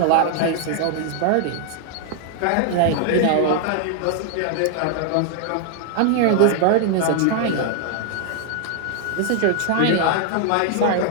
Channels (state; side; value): different; both; correlation 0.00